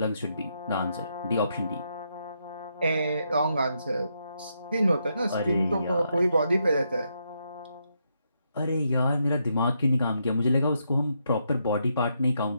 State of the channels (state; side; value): inverted; both; correlation -0.79